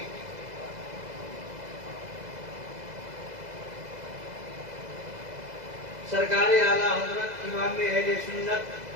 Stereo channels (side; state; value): left; late; 2.0 ms